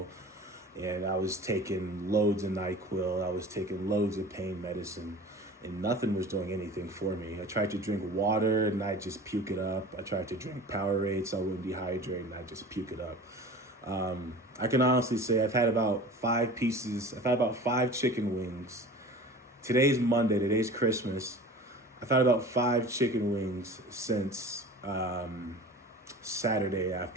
And I was taking loads of NyQuil. I was taking loads of pain medicine, and nothing was doing anything for me. I tried to drink water and I just puke it up. I tried to drink Powerade so I wouldn't dehydrate and I just puke it up. I can honestly say I've had about 5 chicken wings. Today's Monday, today's Christmas. I've had about 5 chicken wings since Saturday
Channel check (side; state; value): both; normal; correlation 0.39